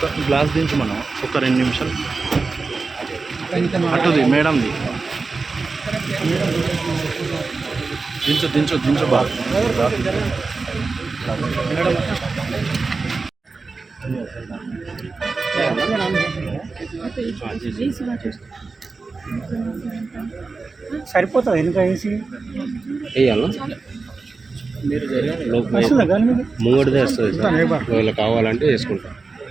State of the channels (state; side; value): quieter; left; 4.1 dB